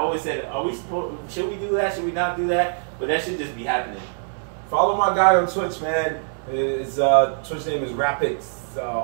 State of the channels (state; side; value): silent; left; digital silence